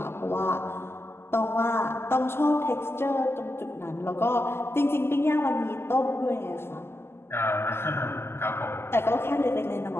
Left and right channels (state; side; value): late; right; 0.12 ms